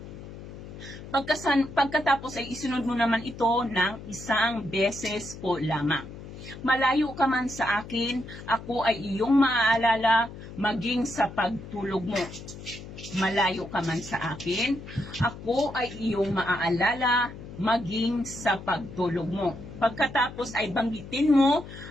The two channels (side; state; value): left; noise; hum, 13 dB below the sound